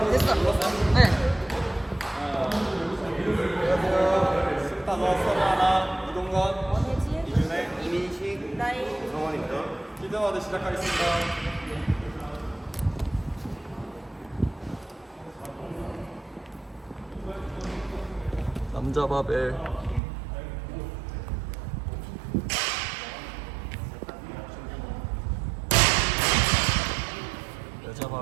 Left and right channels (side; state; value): left; drops out; at 20.0 s